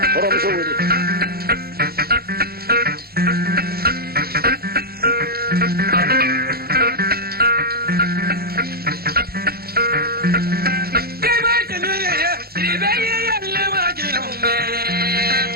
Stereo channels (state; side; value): late; left; 0.45 ms